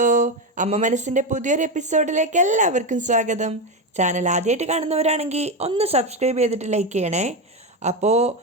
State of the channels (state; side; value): normal; both; correlation 0.13